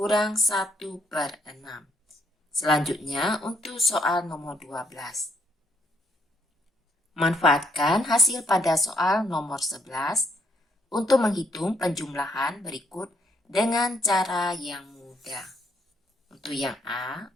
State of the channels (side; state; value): both; normal; correlation 0.71